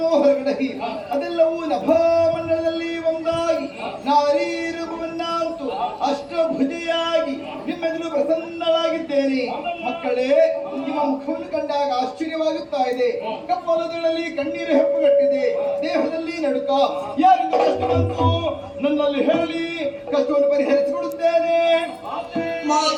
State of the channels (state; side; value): identical; both; correlation 1.00